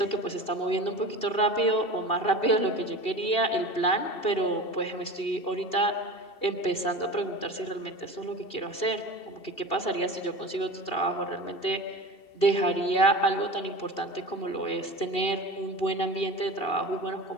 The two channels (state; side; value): late; right; 2.7 ms